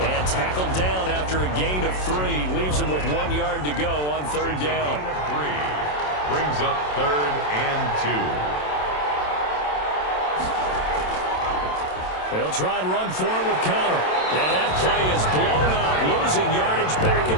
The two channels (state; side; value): late; right; 27 ms